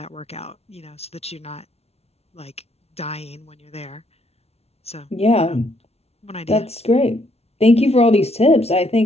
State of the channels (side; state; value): right; late; 0.30 ms